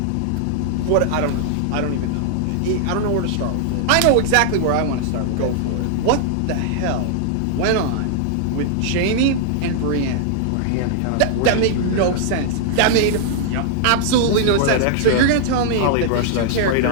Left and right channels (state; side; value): different; both; correlation -0.01